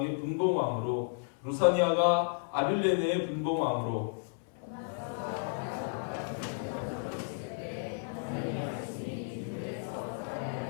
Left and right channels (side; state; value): right; silent; 56 dB below the other